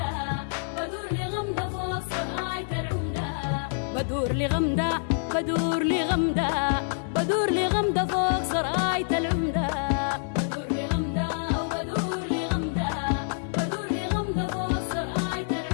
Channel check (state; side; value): silent; right; digital silence